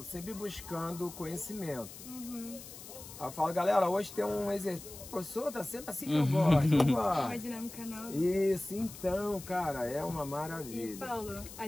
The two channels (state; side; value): noise; left; hiss, 14 dB below the sound